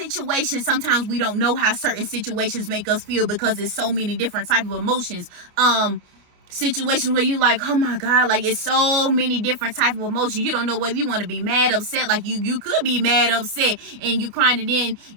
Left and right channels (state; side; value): late; left; 29 ms